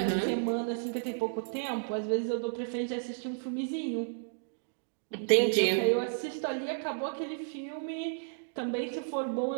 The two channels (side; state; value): left; silent; digital silence